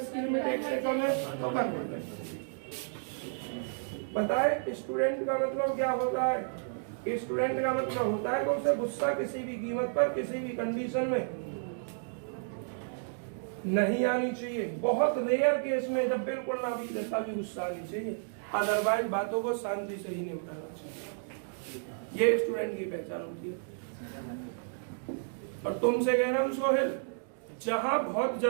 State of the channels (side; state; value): left; silent; digital silence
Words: लिमिट 1 से कम है तो कन्वर्जेंट। बताए स्टूडेंट का मतलब क्या होता है? स्टूडेंट का मतलब होता है कि उसे गुस्सा किसी भी कीमत पर किसी भी कंडीशन में नहीं आनी चाहिए। बहुत रेयर केस में जब बिल्कुल ना भी देता भी गुस्सा आनी चाहिए, अदरवाइज बातों को शांति से ही निपटाना चाहिए। ये स्टूडेंट की पहचान होती है। और तुमसे कह रहा हूं सोहेल, जहां बहुत